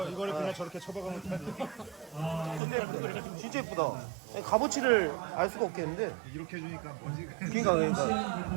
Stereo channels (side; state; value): left; drops out; at 2.6 s